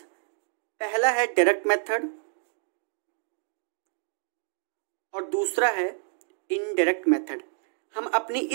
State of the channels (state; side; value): silent; left; 59 dB below the other